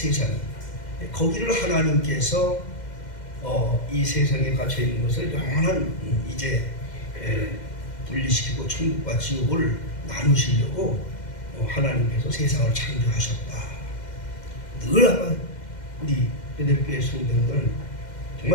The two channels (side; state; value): right; late; 2.1 ms